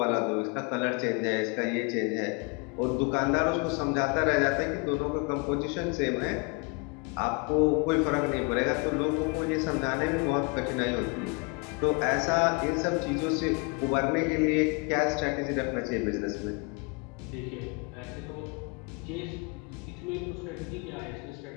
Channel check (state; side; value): quieter; right; 30.5 dB